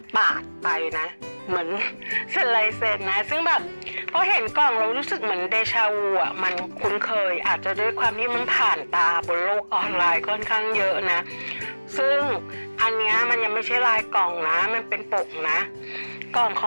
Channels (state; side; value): inverted; both; correlation -1.00